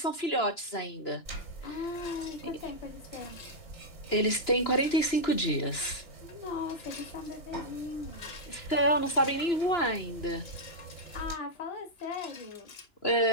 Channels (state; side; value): late; right; 2.9 ms